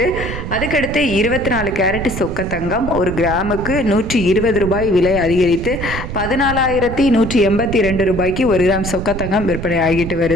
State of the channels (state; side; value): noise; right; rumble, 7 dB below the sound